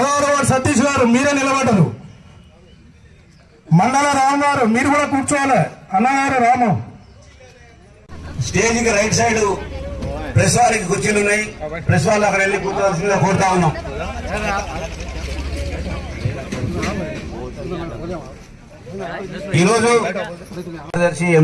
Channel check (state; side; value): identical; both; correlation 1.00